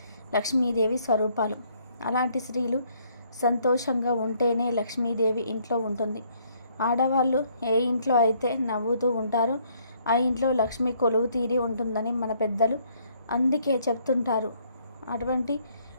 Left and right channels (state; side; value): inverted; both; correlation -0.66